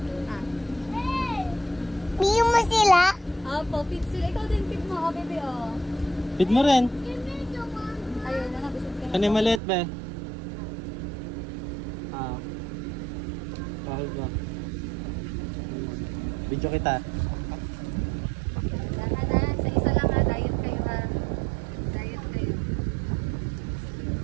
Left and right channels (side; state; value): left; drops out; at 9.6 s